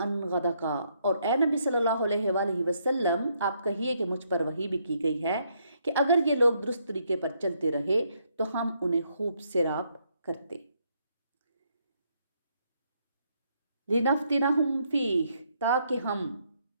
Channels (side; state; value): both; inverted; correlation -0.73